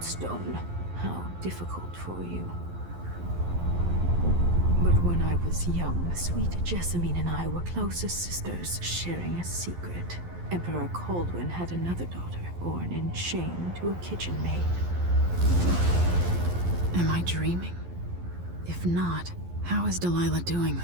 stone. How difficult for you. But when I was young, sweet Jessamine and I were close as sisters, sharing a secret. Emperor Kaldwin had another daughter, born in shame to a kitchen maid. Am I dreaming? If not, how is Delilah doing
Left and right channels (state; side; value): late; left; 11 ms